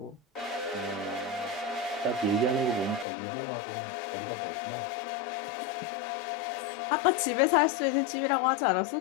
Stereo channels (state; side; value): drops out; right; at 3.1 s